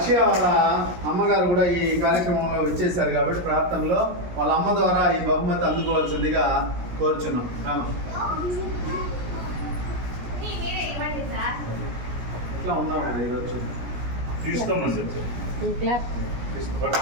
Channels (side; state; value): left; late; 17 ms